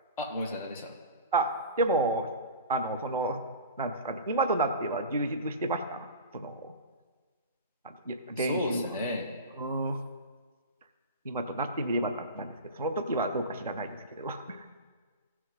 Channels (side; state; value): both; inverted; correlation -0.31